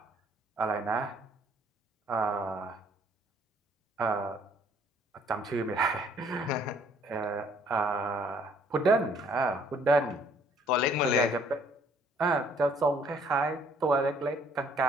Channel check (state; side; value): normal; both; correlation 0.61